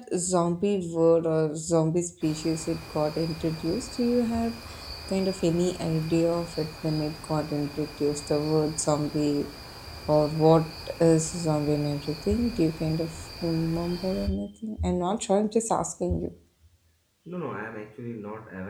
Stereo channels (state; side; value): identical; both; correlation 1.00